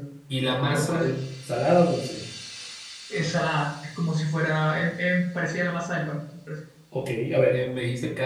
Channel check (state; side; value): identical; both; correlation 1.00